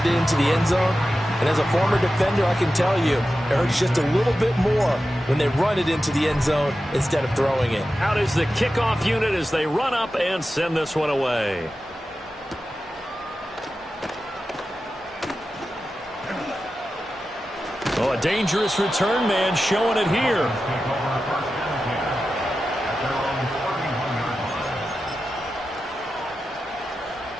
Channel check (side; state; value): both; normal; correlation 0.92